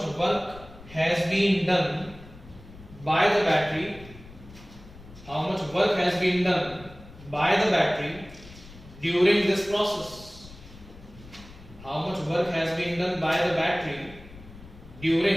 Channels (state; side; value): noise; left; rumble, 19 dB below the sound